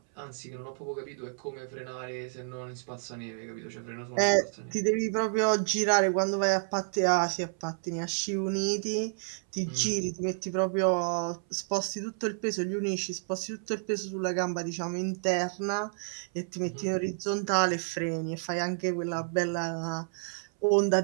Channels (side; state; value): left; silent; 58 dB below the other